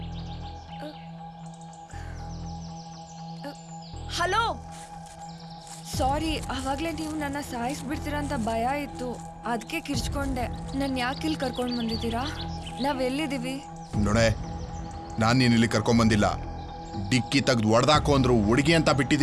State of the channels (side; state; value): both; identical; correlation 1.00